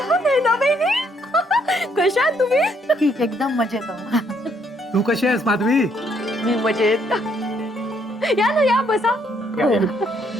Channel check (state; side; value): normal; both; correlation 0.70